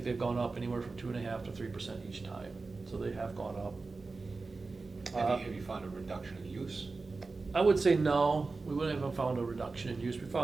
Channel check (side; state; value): left; quieter; 3.9 dB